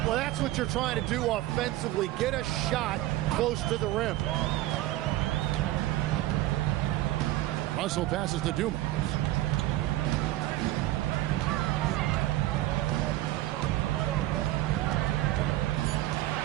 Well, that's what you're trying to do offensively. Get a shot close to the rim. Russell passes to Dumas.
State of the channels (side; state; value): left; quieter; 15.8 dB